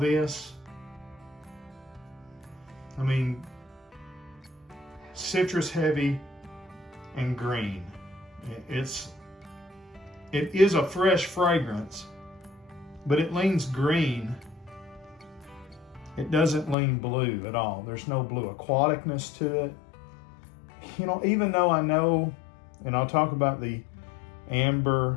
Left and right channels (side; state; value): right; drops out; at 16.8 s